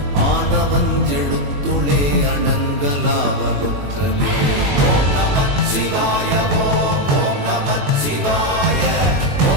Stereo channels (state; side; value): late; left; 21 ms